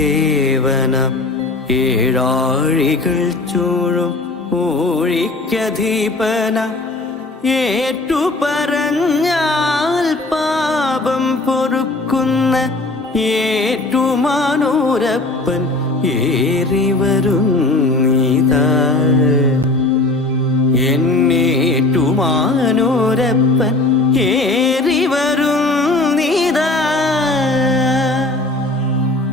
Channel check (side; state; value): right; quieter; 3.0 dB